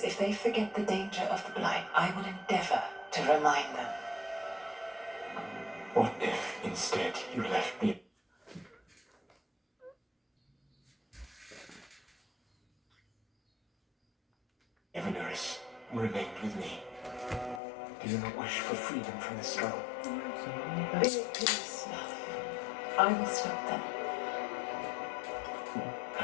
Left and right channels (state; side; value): drops out; right; at 17.6 s